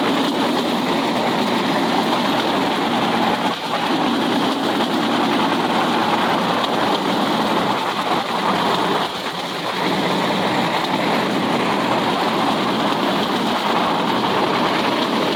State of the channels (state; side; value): identical; both; correlation 1.00